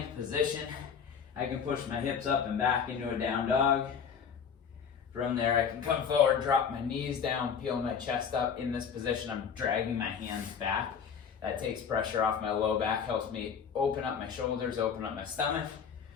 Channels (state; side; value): quieter; right; 7.0 dB